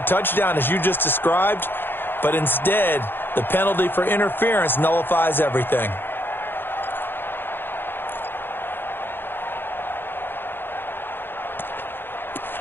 touchdown, as you just described. But instead, the penalty for interference nullifies everything.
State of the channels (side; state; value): right; late; 0.10 ms